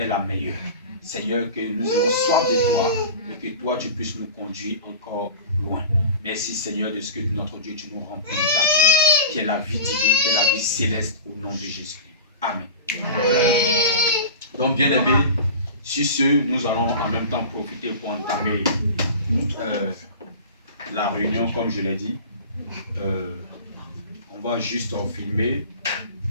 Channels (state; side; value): inverted; both; correlation -0.33